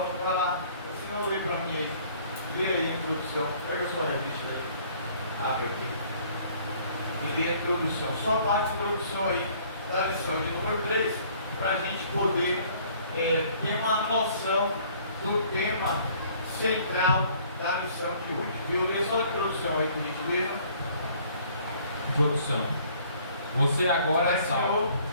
para lá. Se não, lê para mim aí. Lê aí a introdução. Pega a sua revista aí. Abre aqui. E lê a introdução. Só a parte de introdução aí da lição de número 3, para a gente poder ter uma noção do tema central da lição de hoje. Viu? Lê só a introdução aí, por gentileza. Introdução. Você agora é salvo.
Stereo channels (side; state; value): both; inverted; correlation -0.57